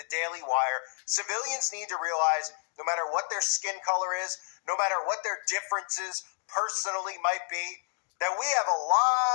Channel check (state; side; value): silent; right; digital silence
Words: Daily Wire. Civilians need to realize no matter what their skin color is, no matter what their differences personally might be, that we have a